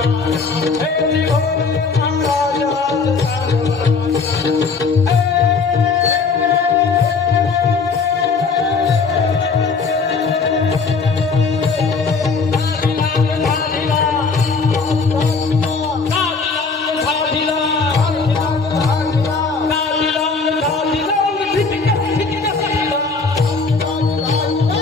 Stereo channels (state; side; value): quieter; right; 4.6 dB